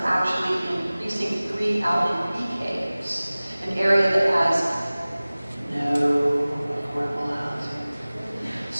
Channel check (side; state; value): both; inverted; correlation -0.99